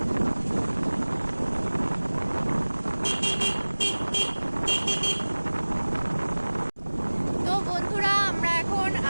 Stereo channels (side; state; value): both; inverted; correlation -1.00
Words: তো বন্ধুরা, আমরা এখন